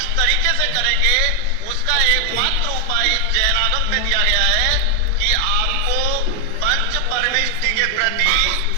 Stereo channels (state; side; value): different; both; correlation 0.00